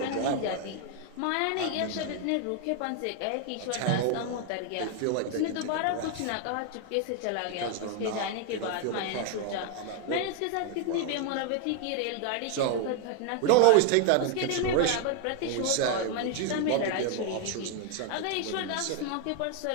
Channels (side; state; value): both; different; correlation 0.01